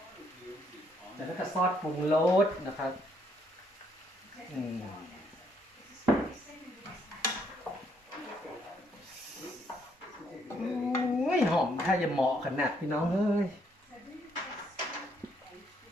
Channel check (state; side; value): normal; both; correlation 0.71